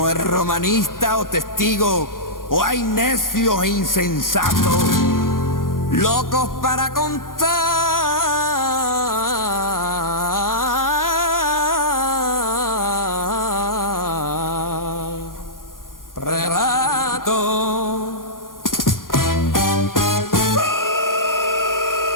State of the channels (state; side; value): late; right; 0.91 ms